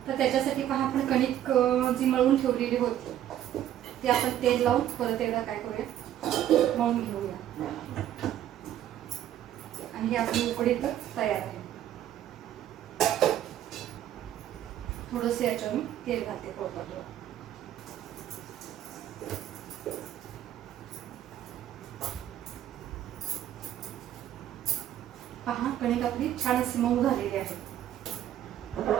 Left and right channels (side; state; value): left; quieter; 11.6 dB